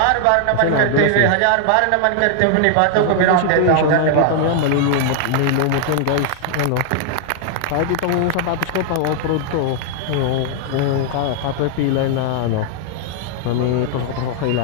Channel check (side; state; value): both; different; correlation 0.00